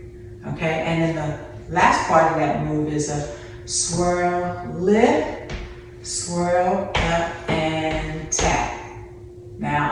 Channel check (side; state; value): both; identical; correlation 1.00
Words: Okay, and then the last part of that move is a swirl, lift, swirl, up, and tap. Now,